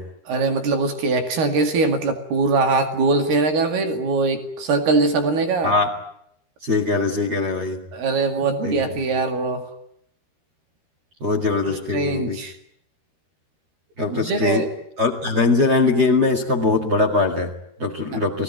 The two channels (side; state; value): left; late; 13 ms